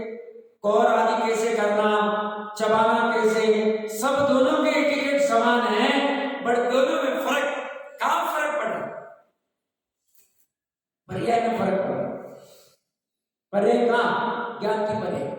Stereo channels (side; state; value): both; identical; correlation 1.00